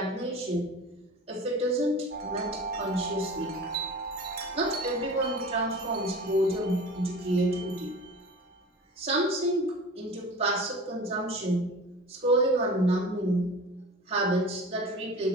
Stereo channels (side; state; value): both; normal; correlation 0.37